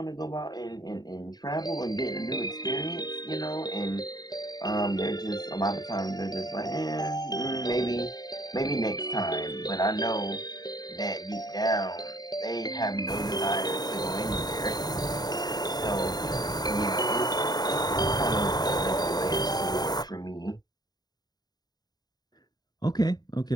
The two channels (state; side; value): late; right; 0.19 ms